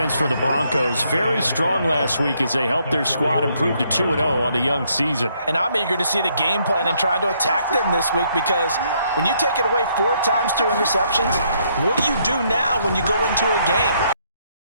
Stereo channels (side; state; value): both; inverted; correlation -0.71